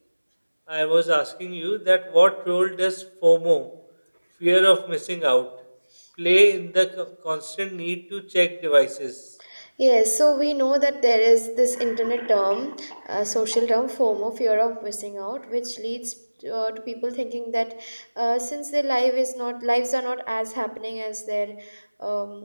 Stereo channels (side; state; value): both; inverted; correlation -1.00